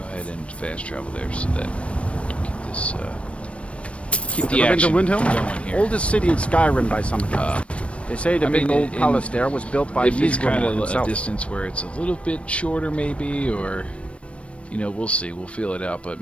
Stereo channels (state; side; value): late; right; 0.061 ms